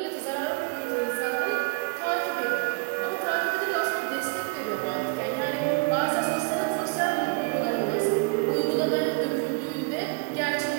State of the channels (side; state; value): left; quieter; 30.9 dB